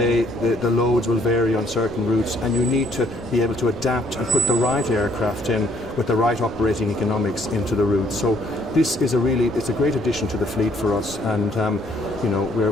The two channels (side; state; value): left; noise; rumble, 17 dB below the sound